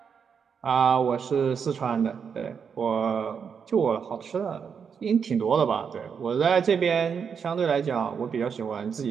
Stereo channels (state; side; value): quieter; left; 6.7 dB